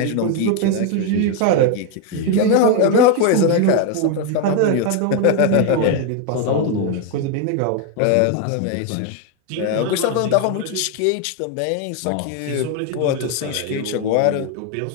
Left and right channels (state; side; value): different; both; correlation 0.01